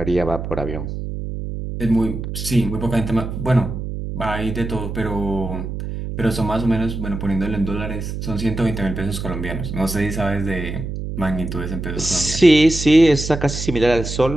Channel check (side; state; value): right; noise; hum, 6 dB below the sound